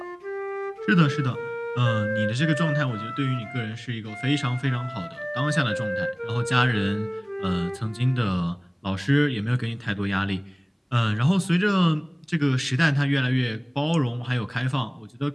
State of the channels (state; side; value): identical; both; correlation 1.00